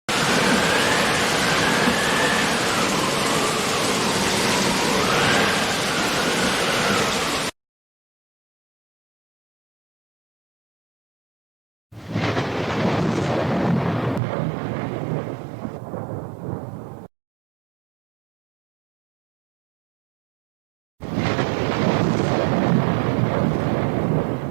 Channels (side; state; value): left; drops out; at 14.2 s